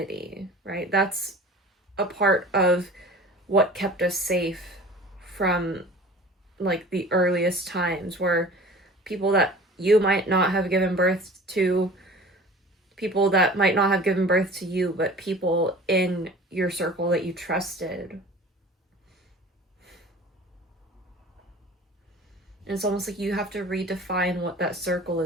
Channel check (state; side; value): normal; both; correlation 0.42